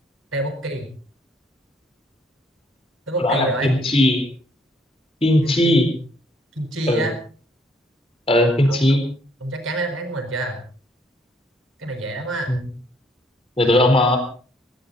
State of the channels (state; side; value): normal; both; correlation 0.66